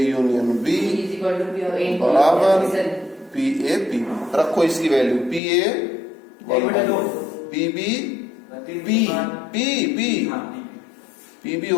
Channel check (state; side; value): drops out; right; at 5.4 s